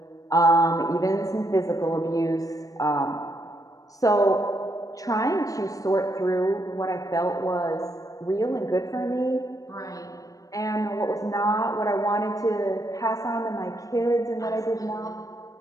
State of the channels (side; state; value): right; late; 0.17 ms